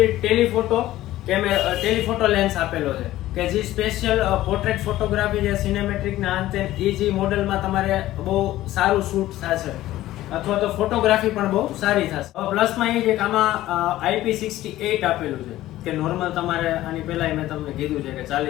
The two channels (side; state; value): right; quieter; 15.2 dB